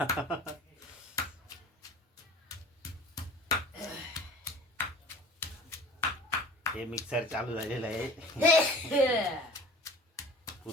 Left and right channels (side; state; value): both; normal; correlation 0.42